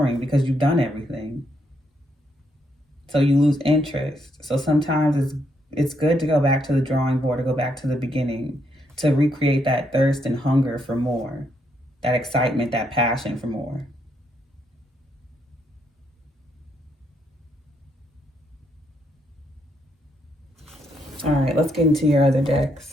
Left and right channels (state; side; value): normal; both; correlation 0.76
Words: because you've done everything. So you lose interest. So sometimes it's good to go back to the drawing board, to go back to the beginning, to recreate that thirst and hunger for more, that excitement, that passion for more. All right, let's get into your other